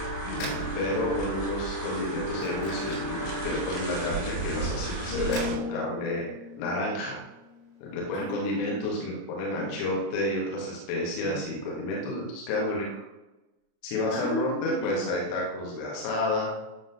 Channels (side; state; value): right; late; 34 ms